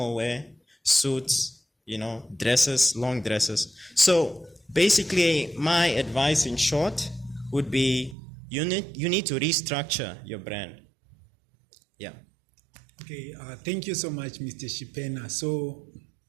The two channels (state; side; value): drops out; left; at 8.2 s